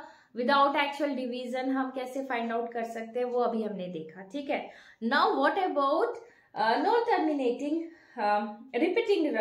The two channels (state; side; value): identical; both; correlation 1.00